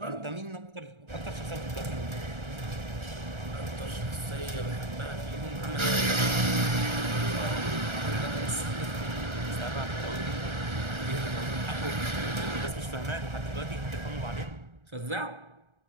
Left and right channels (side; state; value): left; late; 1.3 ms